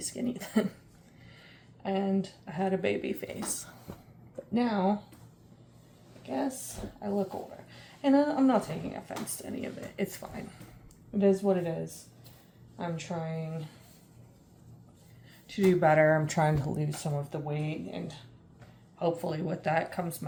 then. And I had a baby face. But now, I guess I look older. And I'm not taking offense to any of it. It's fine. It is what it is. I'm trying to do better. I'm trying to lose some of the weight. And hopefully with that comes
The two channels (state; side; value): identical; both; correlation 1.00